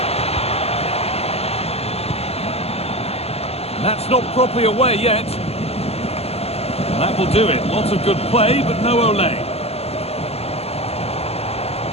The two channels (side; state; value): right; late; 0.29 ms